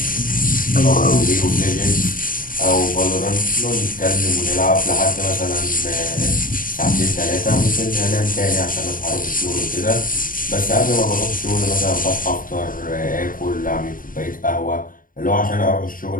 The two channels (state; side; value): late; right; 0.40 ms